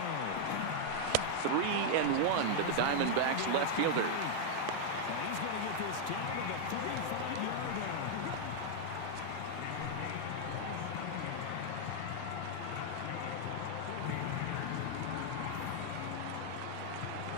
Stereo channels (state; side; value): different; both; correlation 0.00